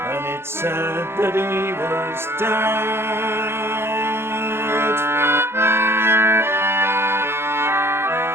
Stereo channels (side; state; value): left; late; 0.12 ms